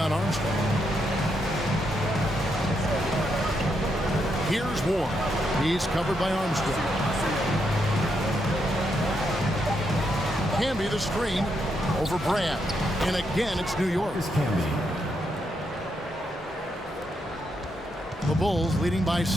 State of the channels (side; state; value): both; normal; correlation 0.80